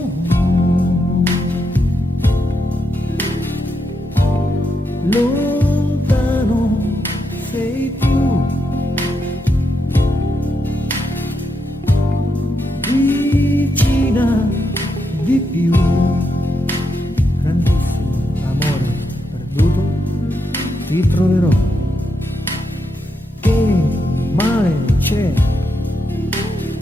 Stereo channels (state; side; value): normal; both; correlation 0.82